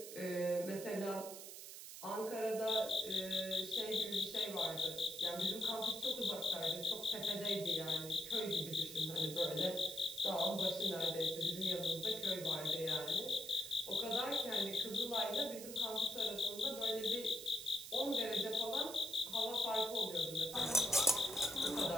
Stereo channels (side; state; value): right; noise; hiss, 11 dB below the sound